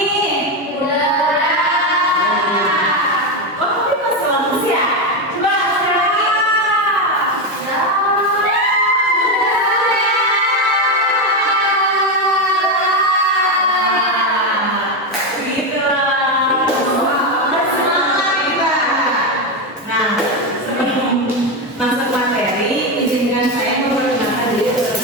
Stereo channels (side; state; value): both; normal; correlation 0.10